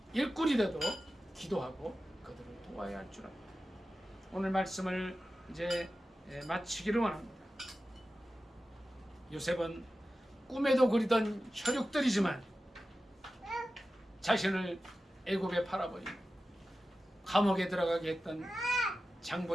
일꾼이 되도록 기도하고 그들을 도와야 할 줄 압니다. 오늘 말씀을 이제 마치기를 원합니다. 요셉은 꿈에도 그리던 혈육들이지만 자신을 애굽에 팔아버린 감옥에 들어가게 했던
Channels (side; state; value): both; normal; correlation 0.94